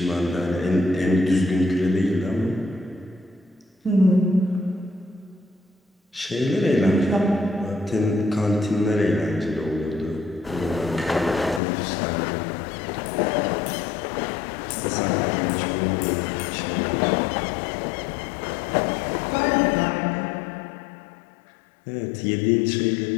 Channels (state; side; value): drops out; right; at 11.6 s